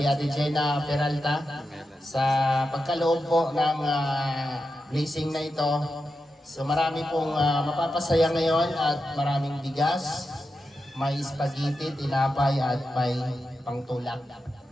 Ate Gina Peralta sa pagkaloob po ng blessing na ito. So marami pong mapapasaya ngayon at maraming bigas, may spaghetti, tinapay at may pangtulak.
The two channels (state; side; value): normal; both; correlation 0.89